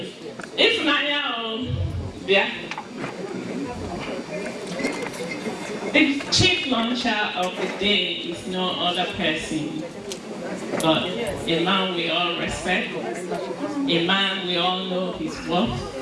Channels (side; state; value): both; identical; correlation 1.00